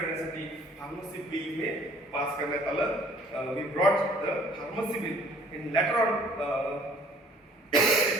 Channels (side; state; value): both; normal; correlation 0.56